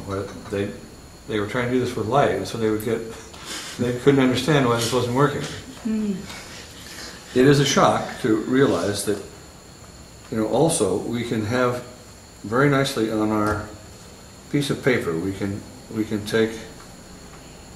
where they were trying to do this with light, and so they couldn't understand why this wasn't working. It is a shock to realize that, you know, also we can have very nicely on our piece of paper, we can take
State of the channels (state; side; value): identical; both; correlation 1.00